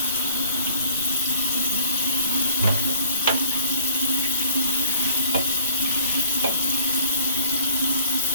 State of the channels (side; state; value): both; inverted; correlation -0.59